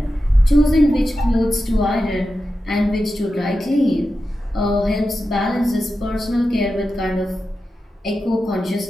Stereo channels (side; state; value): both; normal; correlation 0.91